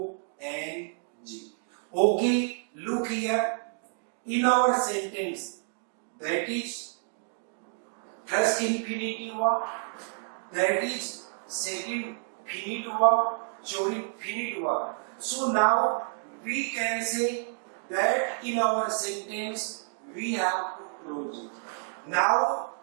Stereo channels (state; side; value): silent; left; 58 dB below the other